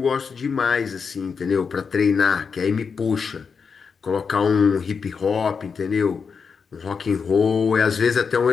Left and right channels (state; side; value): quieter; right; 5.7 dB